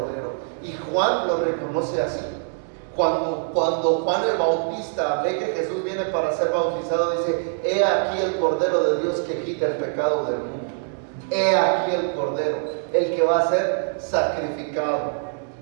Y Juan lo reconoce así. Cuando Juan el Bautista ve que Jesús viene para ser bautizado, dice: he aquí el Cordero de Dios que quita el pecado del mundo. He aquí el Cordero, el que va a ser sacrificado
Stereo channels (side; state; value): left; silent; digital silence